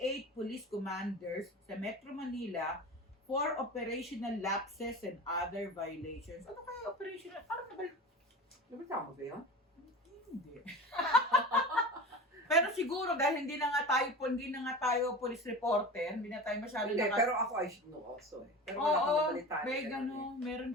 police commanders sa Metro Manila for operational lapses and other violations. Ano kaya operational? Parang Nabitama ba yun? Hindi. Pero siguro dahil hindi na nga tayo police reporter, hindi na tayo masyado pero ako I should know also eh. Pero wala akong nabalitaan. Meron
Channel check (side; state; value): both; normal; correlation 0.32